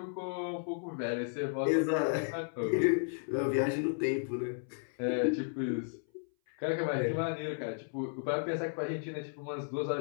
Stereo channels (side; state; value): right; silent; 55 dB below the other